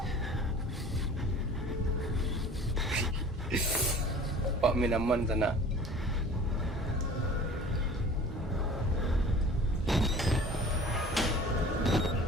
Pak main aman sana.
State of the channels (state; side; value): normal; both; correlation 0.44